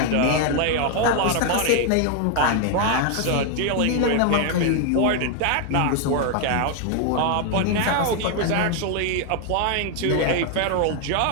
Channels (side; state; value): both; different; correlation 0.00